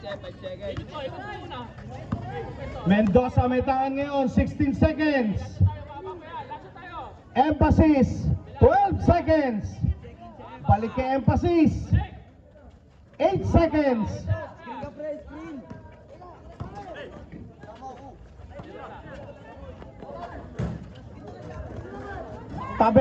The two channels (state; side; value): identical; both; correlation 1.00